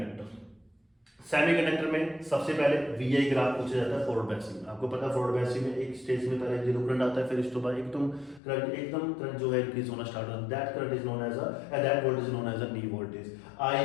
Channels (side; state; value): right; drops out; at 8.4 s